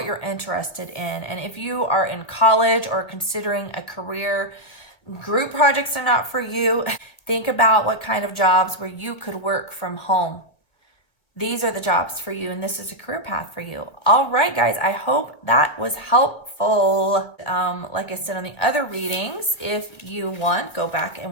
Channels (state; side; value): late; right; 1.9 ms